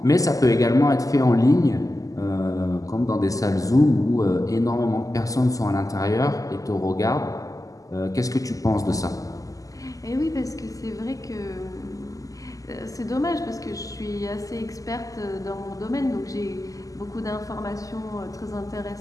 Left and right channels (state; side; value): late; right; 0.17 ms